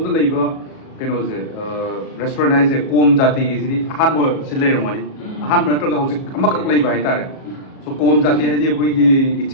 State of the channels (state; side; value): late; right; 37 ms